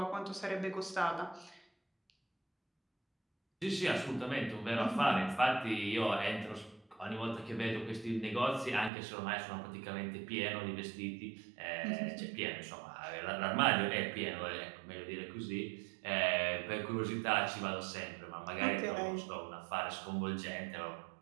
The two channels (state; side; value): drops out; left; at 8.9 s